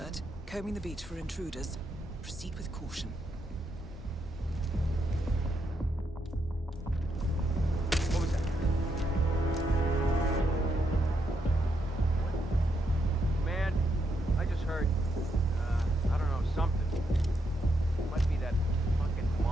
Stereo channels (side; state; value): both; normal; correlation 0.80